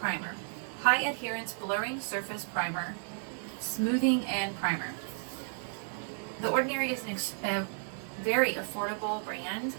High Adherence Blurring Surface Primer, Smoothing and Primer. The Ordinary is a very affordable brand,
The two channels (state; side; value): silent; left; digital silence